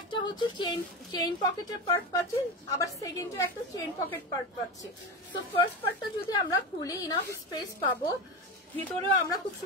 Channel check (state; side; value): normal; both; correlation 0.21